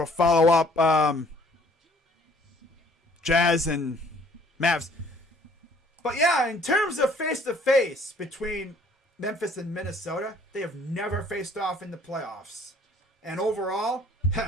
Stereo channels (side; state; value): both; normal; correlation 0.58